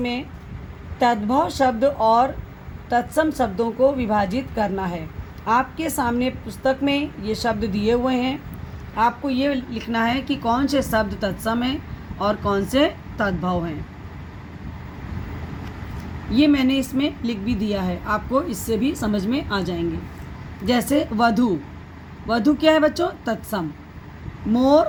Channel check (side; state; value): both; identical; correlation 1.00